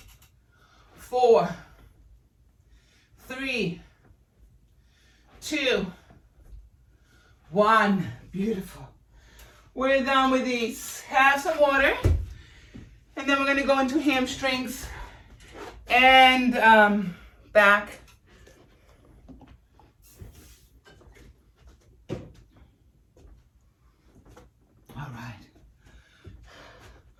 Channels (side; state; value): both; identical; correlation 1.00